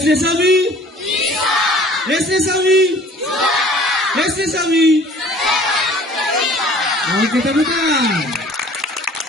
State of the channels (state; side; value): normal; both; correlation 0.51